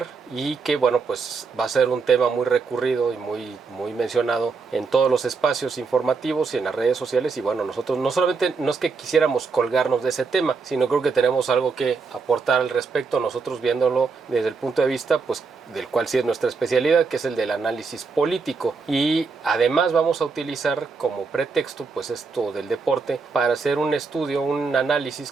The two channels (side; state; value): left; quieter; 4.7 dB